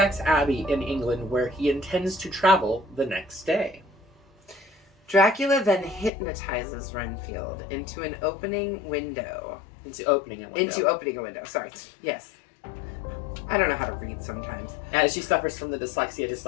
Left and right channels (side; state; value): right; drops out; at 6.1 s